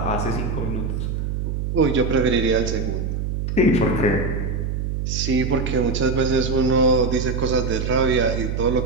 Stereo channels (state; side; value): noise; right; hum, 2 dB below the sound